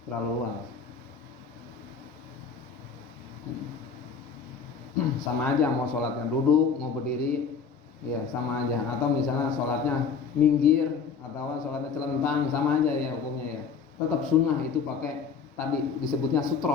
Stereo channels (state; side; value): quieter; right; 5.9 dB